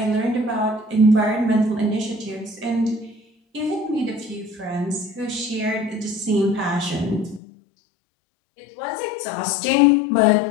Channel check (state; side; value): drops out; right; at 7.4 s